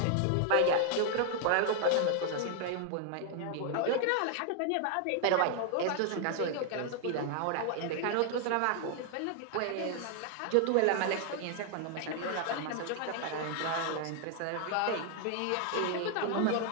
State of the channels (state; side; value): different; both; correlation 0.00